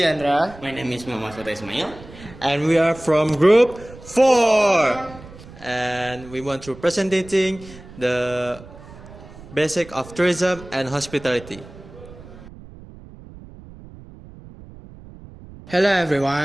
My name is Muhammad Fatah Ismail. And we are from group 4. And we want to presenting the basic of tourism and hospitality. Hello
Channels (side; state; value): right; noise; rumble, 18 dB below the sound